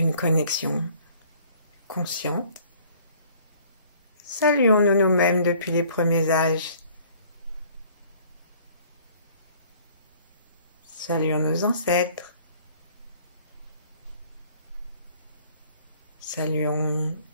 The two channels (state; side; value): inverted; both; correlation -0.55